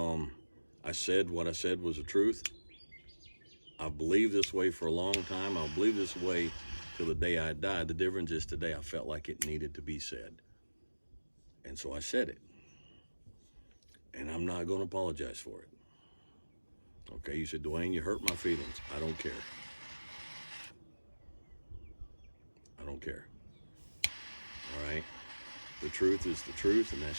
I said what I said was the truth. I've believed this way for a long time. I'll believe this way till the day I die. The difference is today I felt like it needed to be said. And so I said it. And I'm not going to apologize for it. Okay, you said, Dwayne, you hurt my feelings. I don't care. I don't care. All right? The truth is the truth, and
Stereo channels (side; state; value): both; inverted; correlation -1.00